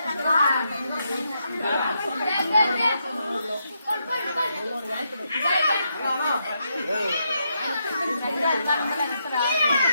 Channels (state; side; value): inverted; both; correlation -0.80